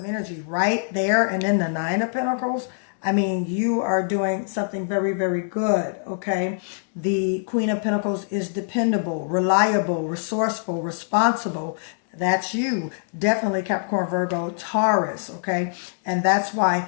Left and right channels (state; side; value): silent; right; digital silence